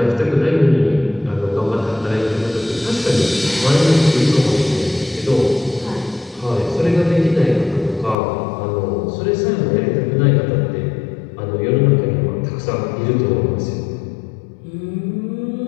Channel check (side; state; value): right; drops out; at 8.2 s